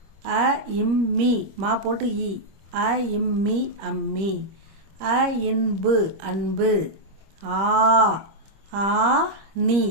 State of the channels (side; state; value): left; late; 25 ms